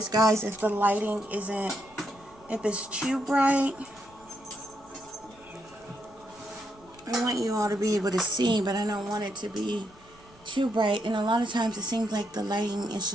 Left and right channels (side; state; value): both; normal; correlation 0.79